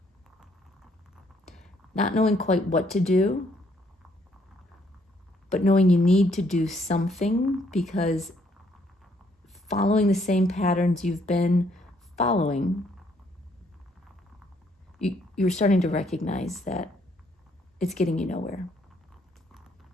not knowing quite what to do, but knowing you need to do something because following the same patterns you've been following, you're starting to recognize that it's getting you nowhere.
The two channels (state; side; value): normal; both; correlation 0.68